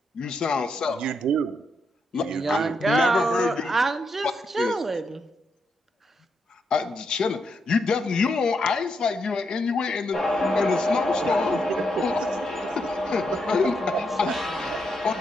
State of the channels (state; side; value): normal; both; correlation 0.80